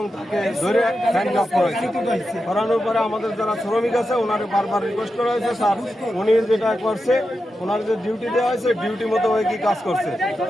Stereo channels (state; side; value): normal; both; correlation 0.89